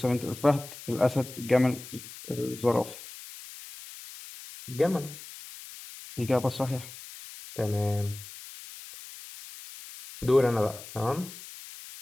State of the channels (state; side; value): noise; left; hiss, 15 dB below the sound